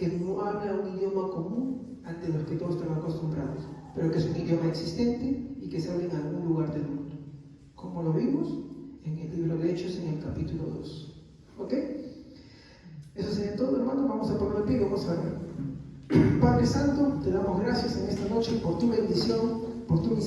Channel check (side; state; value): both; identical; correlation 1.00